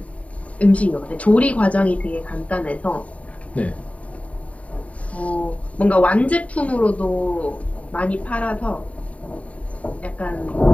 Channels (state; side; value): late; right; 0.067 ms